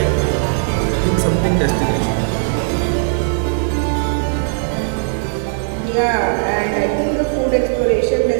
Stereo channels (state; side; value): silent; left; digital silence